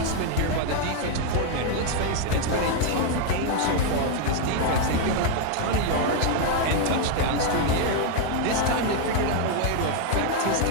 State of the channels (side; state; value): both; different; correlation 0.00